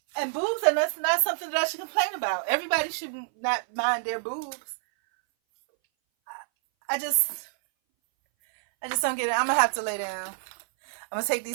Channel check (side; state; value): left; silent; 59 dB below the other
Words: boobs are not something that I should complain about. Everybody should not mind their boobs. I just don't get it. I'm gonna have to lay down. I'm gonna take